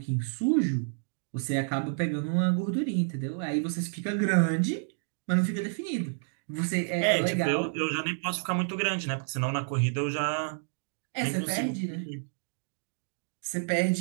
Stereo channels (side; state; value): left; silent; digital silence